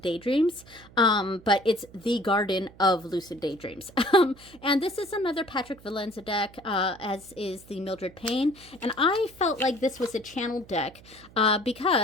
Daydreams, but it's the Garden of Lucid Daydreams. And this is another Patrick Valenza deck, as is the Mildred Payne. And I felt like this was a channeled deck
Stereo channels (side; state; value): right; noise; hum, 22 dB below the sound